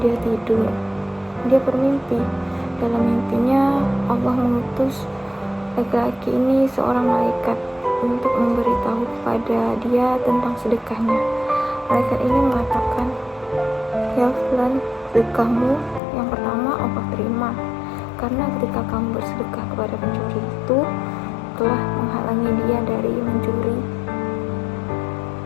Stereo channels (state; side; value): drops out; right; at 16.0 s